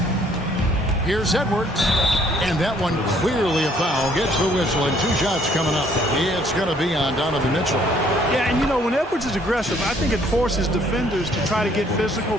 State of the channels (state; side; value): normal; both; correlation 0.63